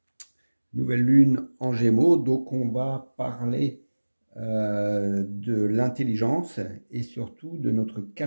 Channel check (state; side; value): inverted; both; correlation -1.00